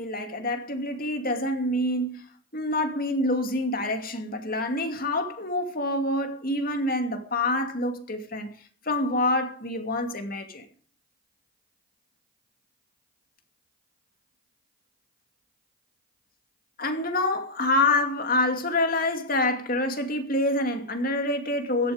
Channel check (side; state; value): both; normal; correlation 0.00